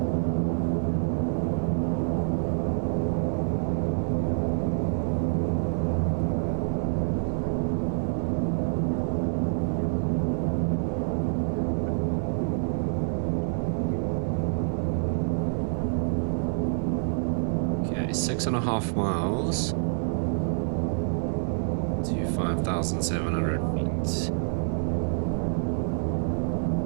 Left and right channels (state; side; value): silent; left; digital silence